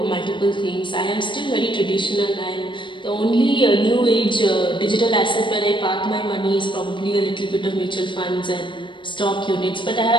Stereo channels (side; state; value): right; late; 0.23 ms